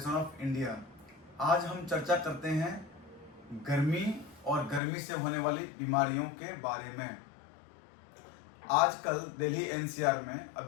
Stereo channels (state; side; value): drops out; right; at 4.8 s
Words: of India. आज हम चर्चा करते हैं गर्मी और गर्मी से होने वाली बीमारियों के बारे में। आजकल दिल्ली एनसीआर में